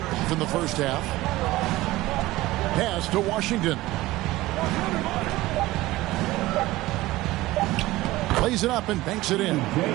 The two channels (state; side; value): quieter; left; 18.1 dB